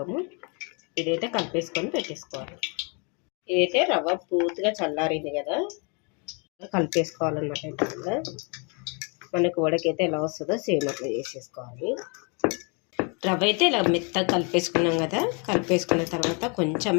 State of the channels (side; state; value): right; quieter; 34.1 dB